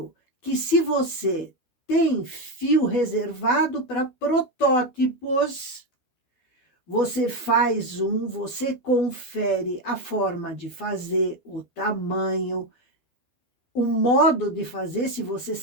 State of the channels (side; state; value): right; late; 12 ms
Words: que se você tem fio reservado para protótipos, você faz você confere a forma de fazer, o tamanho, o modo de fazer, se você